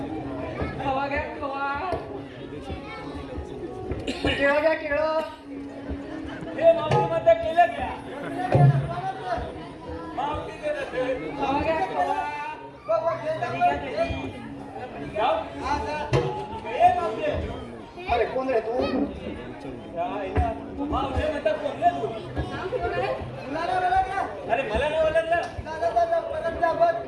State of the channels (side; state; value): both; identical; correlation 1.00